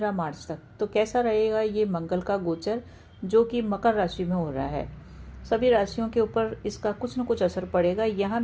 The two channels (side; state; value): both; identical; correlation 1.00